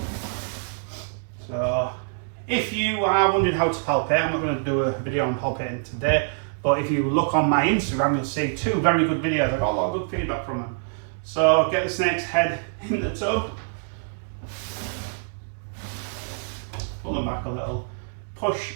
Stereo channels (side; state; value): left; silent; 62 dB below the other